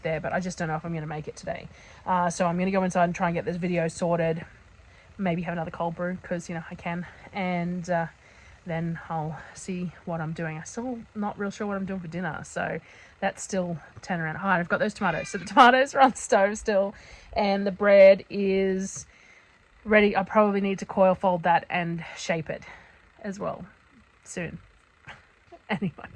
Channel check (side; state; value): both; identical; correlation 1.00